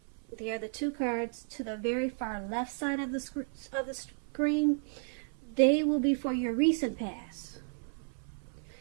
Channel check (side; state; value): left; silent; 56 dB below the other